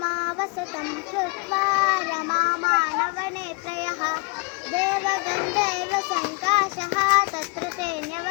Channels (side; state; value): right; quieter; 30.0 dB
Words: కృత్వా రమామానవనేత్రయః దేవగంధర్వ సంకాశః తత్ర ते